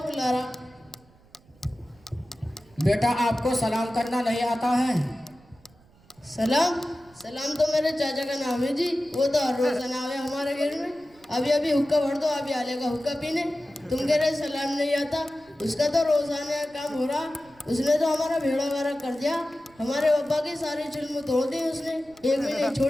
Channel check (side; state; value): right; noise; rumble, 29 dB below the sound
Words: बुला रहा। बेटा आपको सलाम करना नहीं आता है? सलाम तो मेरे चाचा का नाम है जी, वो तो हर रोज नाम है हमारे घर में। अभी हुक्का भर दो, अभी आलेगा हुक्का पीने। तुम कह रहे सलाम नहीं आता, उसका तो रोजाना काम हो रहा। उसने तो हमारा भेड़ा वारा कर दिया, हमारे पापा की सारी चुल्म तोड़ दी उसने, एक भी नहीं